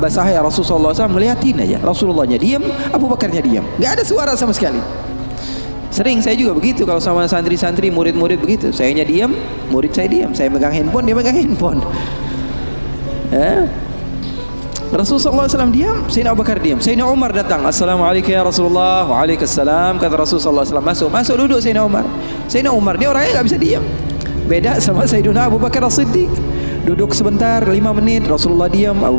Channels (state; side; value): inverted; both; correlation -1.00